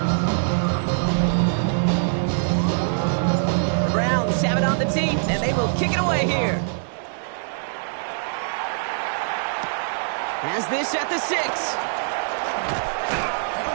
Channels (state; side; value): silent; left; digital silence